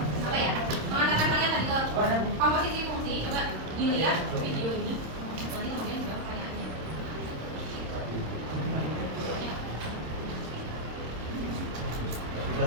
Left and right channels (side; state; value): left; late; 26 ms